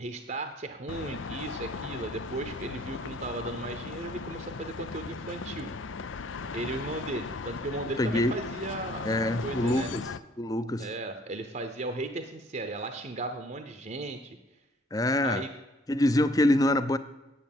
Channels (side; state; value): both; normal; correlation 0.58